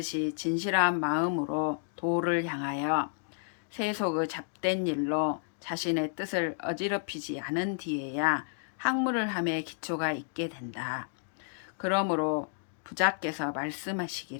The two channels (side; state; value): right; silent; digital silence